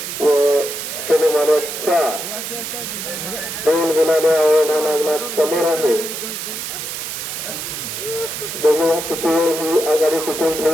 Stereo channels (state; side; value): noise; right; hiss, 6 dB below the sound